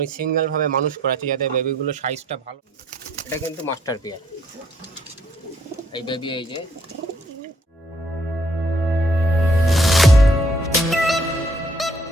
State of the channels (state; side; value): normal; both; correlation 0.67